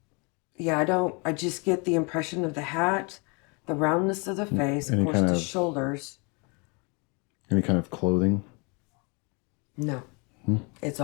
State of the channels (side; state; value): right; quieter; 31.8 dB